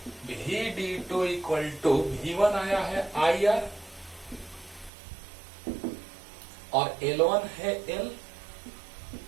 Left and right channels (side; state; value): left; drops out; at 4.9 s